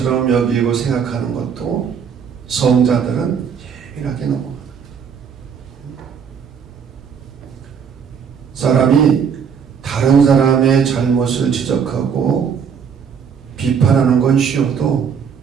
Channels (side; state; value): left; quieter; 7.0 dB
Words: 여기고 생각하는 것도 성자들은 예민하게 넘어가요. 사람이 다른 사람의 잘못을 지적하고 비판하는 건 쉬워도